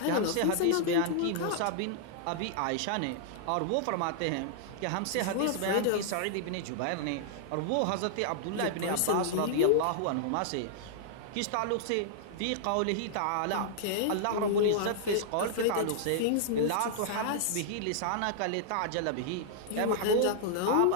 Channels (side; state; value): both; different; correlation -0.01